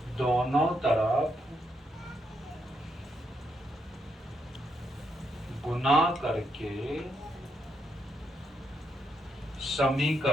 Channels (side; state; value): both; normal; correlation 0.79